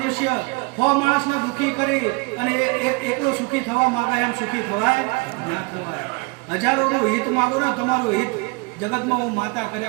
હો માણસને દુઃખી કરી અને એકલો સુખી થવા માંગે, એમ સુખી થવાય ના થવાય. હજારોનું હિત માંગો ને, તમારું હિત જગતમાં હું માતા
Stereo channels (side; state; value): left; quieter; 29.1 dB